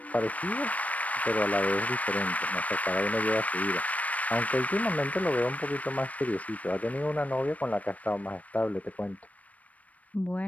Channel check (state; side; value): late; right; 0.069 ms